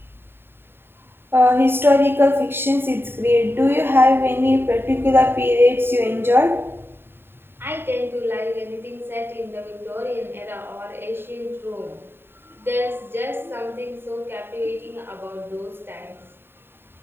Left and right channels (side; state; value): left; late; 0.11 ms